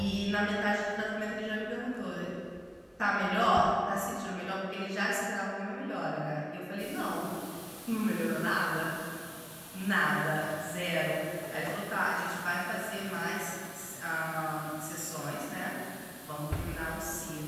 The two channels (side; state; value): both; identical; correlation 1.00